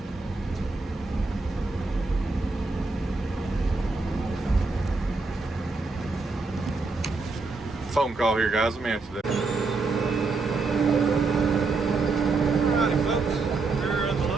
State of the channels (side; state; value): left; quieter; 3.9 dB